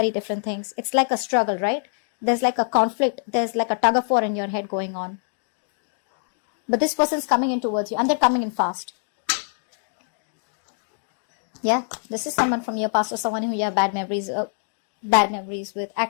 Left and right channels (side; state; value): right; silent; digital silence